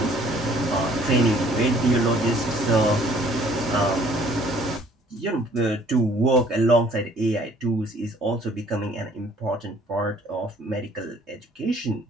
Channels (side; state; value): both; normal; correlation 0.57